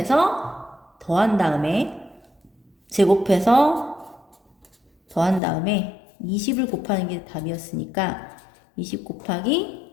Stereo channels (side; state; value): right; drops out; at 5.4 s